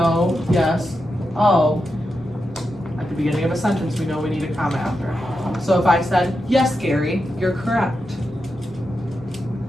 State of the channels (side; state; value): both; normal; correlation 0.88